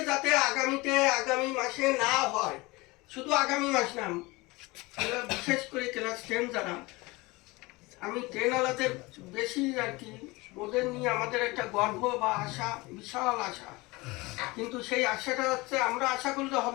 যাতে আগামী মাসে না হয়, শুধু আগামী মাস না, বিশেষ করে ক্লাস 10 যারা, আমি 10 আলাদের বেশি আর কি, ওদের নিয়ে আমাদের একটা গর্ব বা আশা, বিশাল আশা। কিন্তু সেই আশাটা হচ্ছে, আমরা আশা করলে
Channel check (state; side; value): quieter; right; 23.0 dB